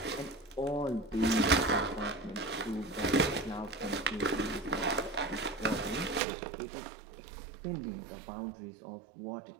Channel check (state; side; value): drops out; left; at 6.2 s